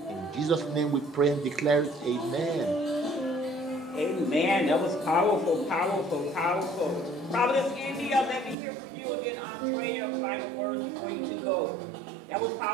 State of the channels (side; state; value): left; drops out; at 8.6 s